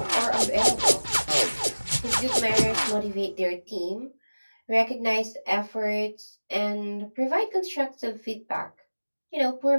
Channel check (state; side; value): inverted; both; correlation -1.00